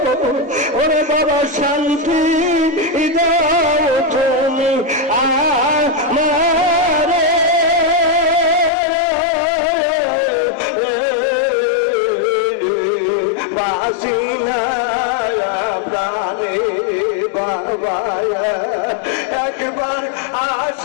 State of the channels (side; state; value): right; drops out; at 8.7 s